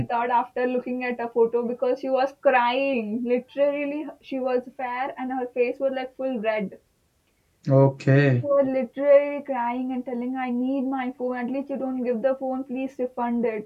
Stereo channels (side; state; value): both; identical; correlation 1.00